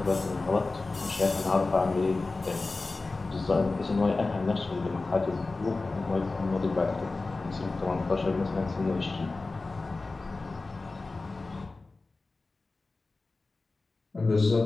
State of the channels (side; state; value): right; quieter; 3.5 dB